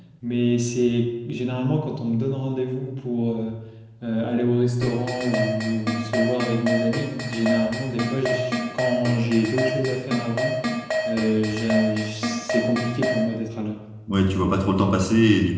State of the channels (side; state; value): both; identical; correlation 1.00